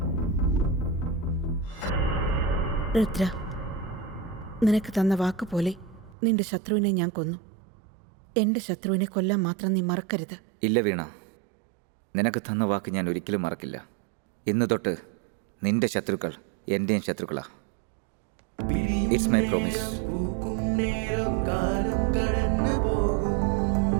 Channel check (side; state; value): left; drops out; at 6.2 s